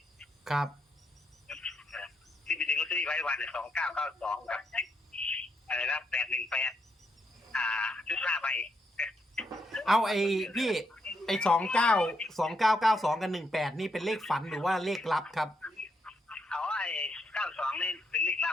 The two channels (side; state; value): both; normal; correlation 0.78